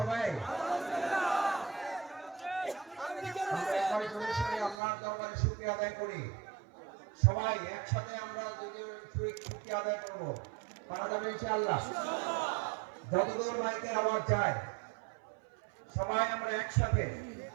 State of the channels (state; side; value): drops out; left; at 4.8 s